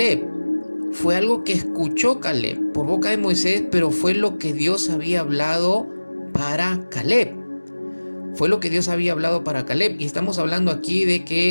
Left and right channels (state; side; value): inverted; both; correlation -1.00